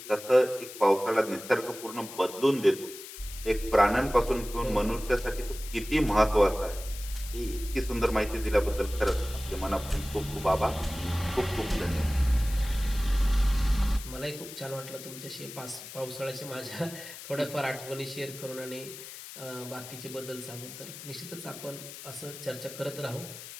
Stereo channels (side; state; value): left; noise; hiss, 13 dB below the sound